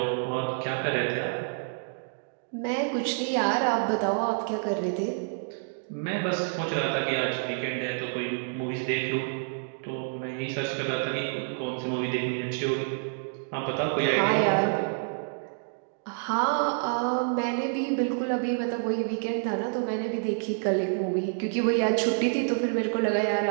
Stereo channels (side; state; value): left; silent; digital silence